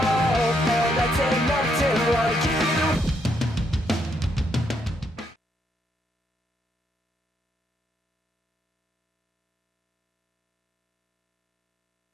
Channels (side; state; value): both; normal; correlation 0.75